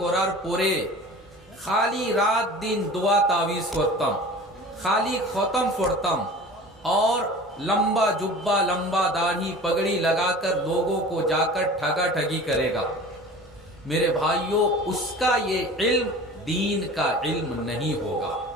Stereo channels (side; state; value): both; normal; correlation 0.40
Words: করার পরে খালি রাত दिन दुआ तावीज করতাম, खाली खत्म पढ़ताम और लंबा जुब्बा, लंबा दाढ़ी पगड़ी लगाकर लोगों को जाकर ठगा ठगी करेगा, मेरे भाइयों उसका ये इल्म दीन का इल्म नहीं होगा।